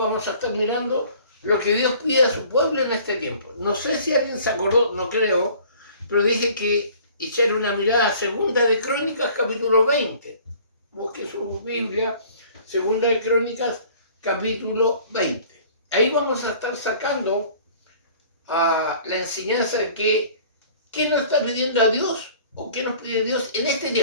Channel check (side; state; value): both; inverted; correlation -0.51